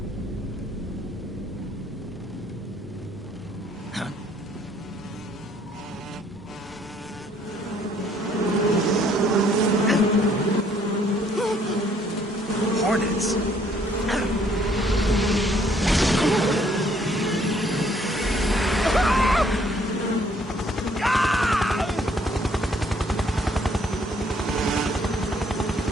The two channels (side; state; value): both; normal; correlation 0.64